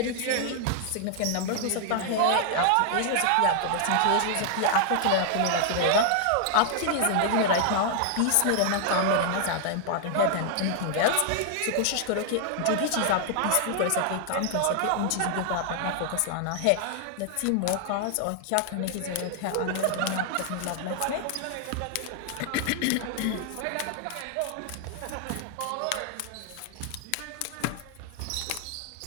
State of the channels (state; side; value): different; both; correlation 0.00